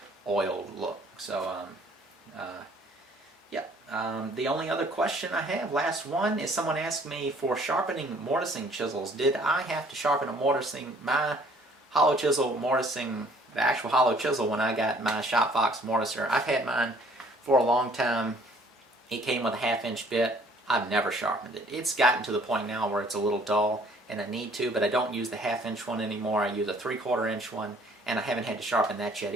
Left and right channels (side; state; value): both; normal; correlation 0.58